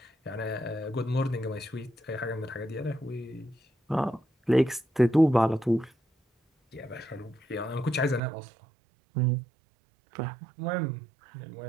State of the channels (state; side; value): drops out; left; at 8.2 s